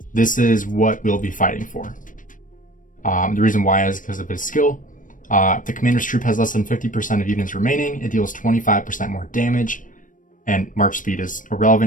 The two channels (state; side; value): late; right; 0.38 ms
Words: This is what we'll be fighting for. The reason why is because of his skill. If the commander's troop has less than 50% of units remaining, it deals 25% more damage, and march speed is